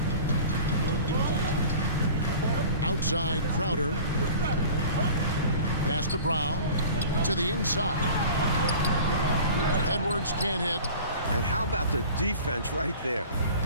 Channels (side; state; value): both; inverted; correlation -0.41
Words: Outside Crowder. Pass to Brown. To the inside. Edwards can't hit. And how about the defense right there?